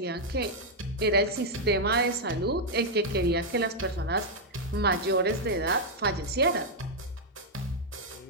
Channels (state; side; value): normal; both; correlation -0.02